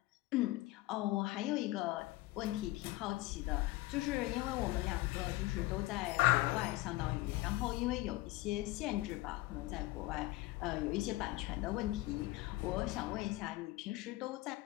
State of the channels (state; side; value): quieter; right; 18.9 dB